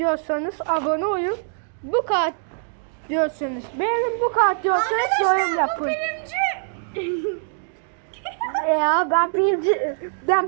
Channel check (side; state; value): left; silent; digital silence